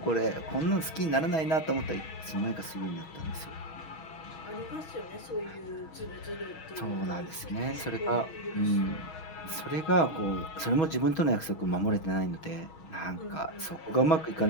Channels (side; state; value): right; late; 6.2 ms